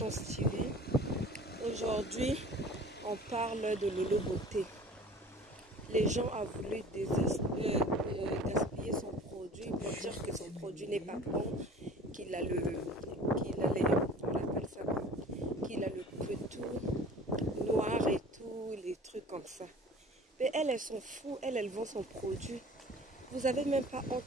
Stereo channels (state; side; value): normal; both; correlation 0.45